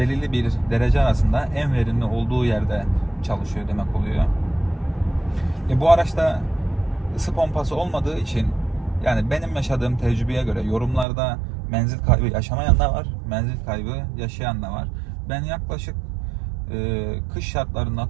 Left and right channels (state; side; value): drops out; left; at 11.1 s